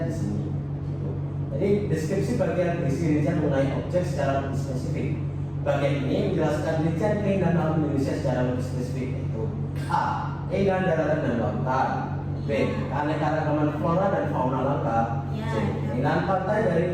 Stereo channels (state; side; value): identical; both; correlation 1.00